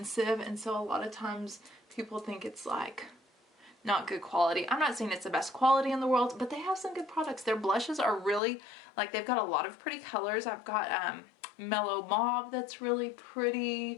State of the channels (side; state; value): right; drops out; at 8.4 s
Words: and so a lot of times people think it's like not good quality. I'm not saying it's the best quality in the world, but they have some good products. Their blushes are really, like, they've got a lot of pretty colors. I've got mellow mauve that's really